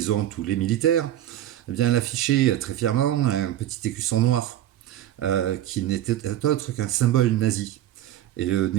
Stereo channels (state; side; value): quieter; left; 12.5 dB